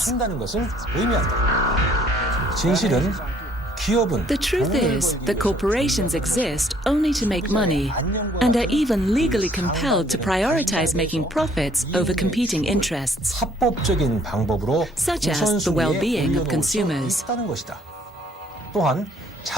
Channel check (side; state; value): both; normal; correlation 0.62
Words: 진실은 기업은 The truth is that corporations exist only to make money and are even legally compelled to prioritize making profits over competing interests, 합법적인 방법으로 such as the well-being of consumers. 또한 And